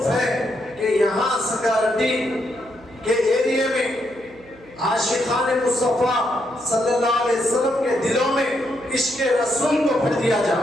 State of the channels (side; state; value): right; noise; hum, 24 dB below the sound